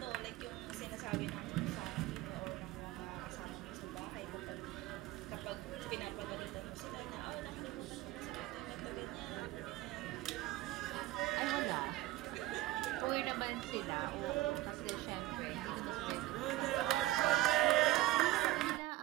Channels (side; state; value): left; quieter; 16.8 dB